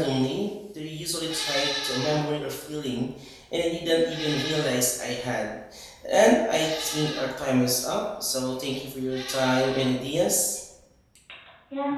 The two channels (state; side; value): identical; both; correlation 1.00